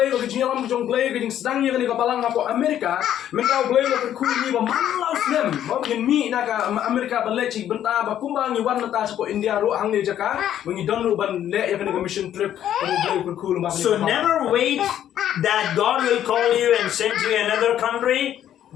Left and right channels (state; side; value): quieter; right; 10.9 dB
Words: never wait that God will call you and send you another country.